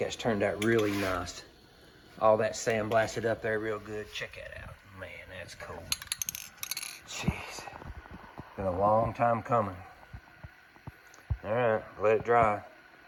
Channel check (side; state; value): both; identical; correlation 1.00